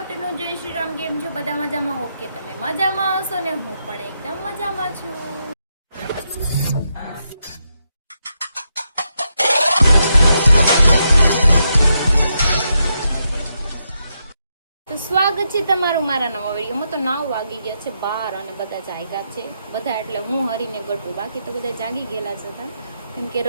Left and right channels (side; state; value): both; inverted; correlation -0.82